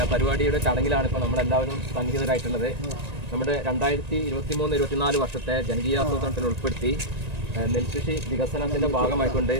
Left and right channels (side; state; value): left; late; 1.9 ms